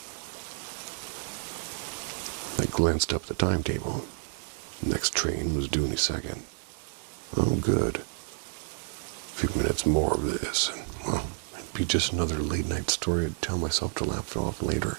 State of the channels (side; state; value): left; silent; digital silence